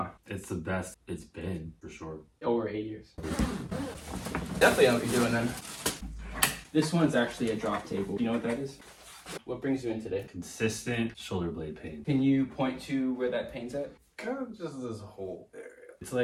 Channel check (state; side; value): identical; both; correlation 1.00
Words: it's the best it's been for sure. Over 8 years. Definitely know what you're doing then. This one's actually a drop table. Do you know what that is? What brings you in today? Consistent shoulder blade pain. Can you point to where that pain's at? Kind of just this whole area. It's